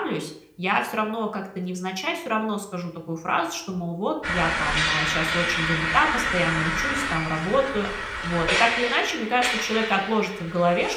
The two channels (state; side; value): identical; both; correlation 1.00